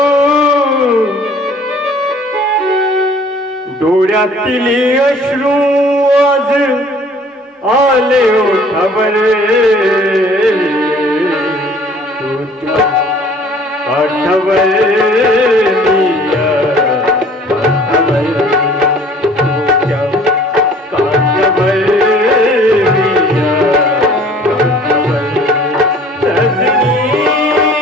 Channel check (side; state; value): both; normal; correlation 0.53